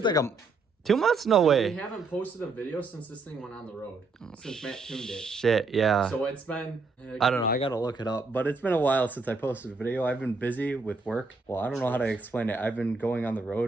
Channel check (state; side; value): quieter; left; 3.8 dB